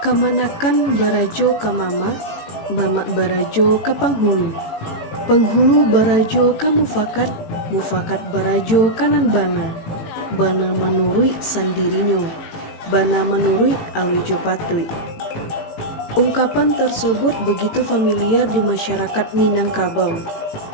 Kamanakan barajo ka mama, mama barajo ka panghulu. Penghulu barajo ka mufakat, mufakat barajo kanan bana. Bana menurui sandirinyo, bana menurui alijo patui. Ungkapan tersebut begitu familiar di masyarakat Minangkabau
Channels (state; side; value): late; right; 18 ms